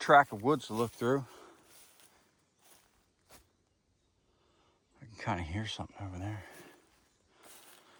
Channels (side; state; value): both; identical; correlation 1.00